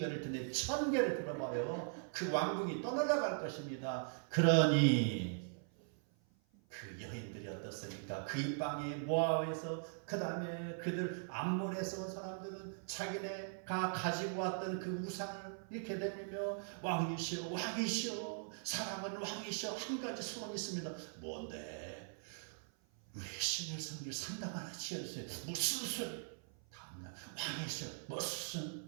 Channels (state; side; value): silent; left; 51 dB below the other